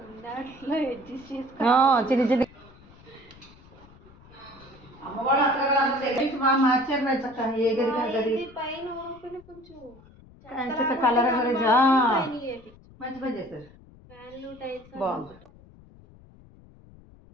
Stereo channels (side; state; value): left; noise; rumble, 24 dB below the sound